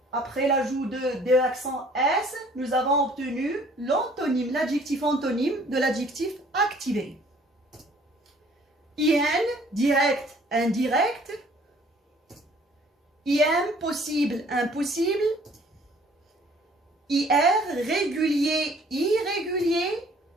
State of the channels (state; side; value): normal; both; correlation 0.56